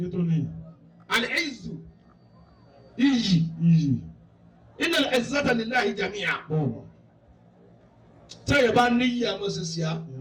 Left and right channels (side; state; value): both; identical; correlation 1.00